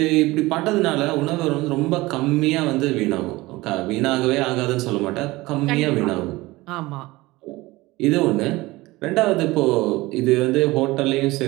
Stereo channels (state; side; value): quieter; left; 20.2 dB